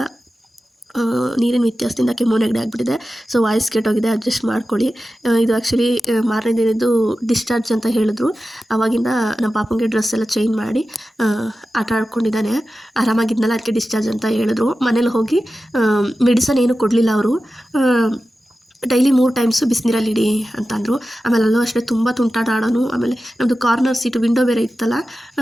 ನೀರಿನ ವ್ಯತ್ಯಾಸದಿಂದ ಕೆಮ್ಮು ನೆಗಡಿ ಆಗಿಬಿಟ್ಟಿದೆ. ಸೊ ವಾಯ್ಸ್ ಕೆಟ್ಟೋಗಿದೆ, ಅಡ್ಜಸ್ಟ್ ಮಾಡ್ಕೊಳ್ಳಿ. ಇದು ಆ್ಯಕ್ಚುಲಿ ಮಾರನೇ ದಿನದ್ದು ಡಿಸ್ಚಾರ್ಜ್ ಅಂತ ಹೇಳಿದ್ರು. ಆವಾಗಿಂದ ನಮ್ಮ ಪಾಪಂಗೆ ಡ್ರೆಸ್ ಎಲ್ಲ ಚೇಂಜ್ ಮಾಡಿ ಆಟ ಆಡ್ಕೊಂಡಿದ್ದಾನೆ. ಆರಾಮಾಗಿದ್ನಲ್ಲ, ಅದಕ್ಕೆ ಡಿಸ್ಚಾರ್ಜ್ ಅಂತ ಹೇಳಿದ್ರು. ಮನೇಲಿ ಹೋಗಿ ಮೆಡಿಸನ್ ಏನು ಕೊಡಲಿಲ್ಲ ಅವರು. ಡೈಲಿ 3 ಟೈಮ್ಸು ಬಿಸಿನೀರಲ್ಲಿ ಇಡಿ ಅಂತಂದರು. ಆಮೇಲೆ ಅಲ್ಲೂ ಅಷ್ಟೇ ತುಂಬ ತುಂಟಾಟ ಆಡೋನು. ಆಮೇಲೆ ನಮ್ಮದು ಕಾರ್ನರ್ ಸೀಟು ವಿಂಡೋ ಬೇರೆ ಇತ್ತಲ್ಲ,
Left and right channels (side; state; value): both; normal; correlation 0.93